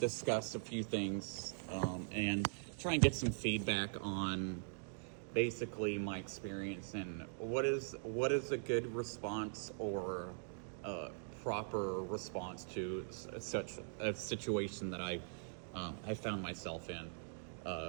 a few things and try and get some feedback on basically my experience and what is a good response or a proper response to such a situation that I found myself in.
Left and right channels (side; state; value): left; silent; digital silence